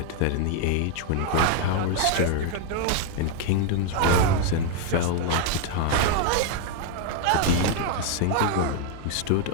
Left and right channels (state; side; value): different; both; correlation 0.00